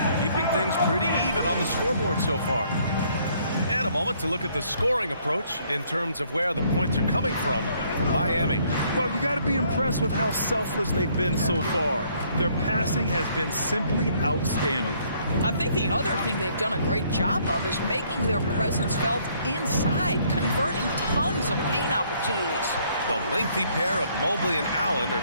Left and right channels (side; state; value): both; inverted; correlation -0.65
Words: keeping things pretty even on the scoreboard so far. And a moment to look at the scoring approach in terms of where the points are coming from Miami. Well, you got to be impressed with how selfless they've been so far. Their passing has been simply outstanding. I think the other thing they've done a great job of is making their presence felt inside, converting tons of paint opportunities. The lengthy pair of Mobley and Allen are